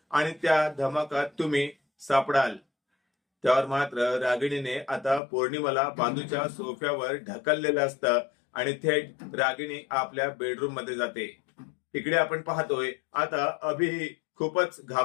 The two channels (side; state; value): right; drops out; at 5.2 s